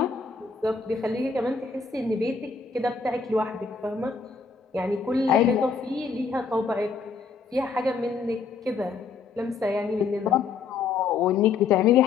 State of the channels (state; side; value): quieter; right; 5.2 dB